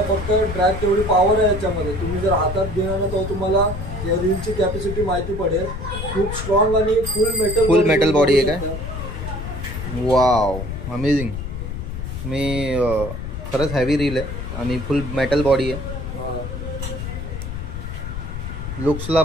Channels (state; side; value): noise; left; rumble, 6 dB below the sound